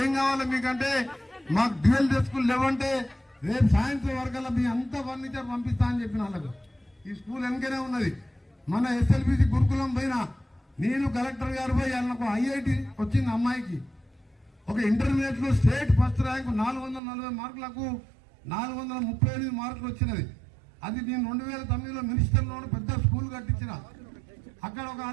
ఏం కావాలి మీకంటే, మాకు డ్యూయల్ స్కూల్ లేవంటే రేపు సాయంత్రం వరకల్లా మీ అంతా ఫర్నిచర్ పంపిస్తా అని చెప్పిన వాళ్ళకు. ఈ స్కూల్ వెనకనే ఉన్నది. మన SLBC గురుకులం పోయినా నేను కలెక్టర్ గారు పోయి వాళ్ళకు IIT వచ్చింది అమ్మాయికి, ఒక ఇంటర్మీడియట్ లో స్టేట్ ఫస్ట్ ర్యాంకు 440 మార్కులకు 438 మార్కులు వచ్చినది. అది నేను 2009లో మినిస్టర్లో పెద్ద స్కూల్ కట్టించిన. అక్కడ ఒక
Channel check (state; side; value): drops out; left; at 17.0 s